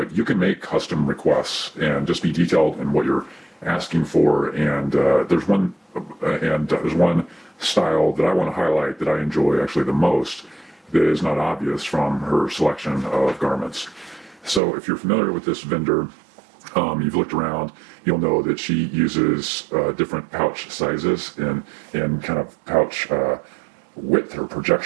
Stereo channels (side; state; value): left; drops out; at 14.6 s